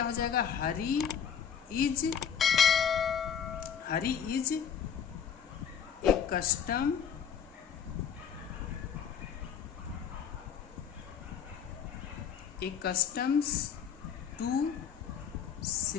हो जाएगा, Hari is a custom customs to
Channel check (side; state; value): right; quieter; 7.7 dB